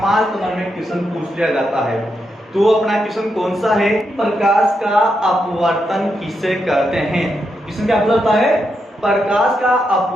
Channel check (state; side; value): normal; both; correlation 0.83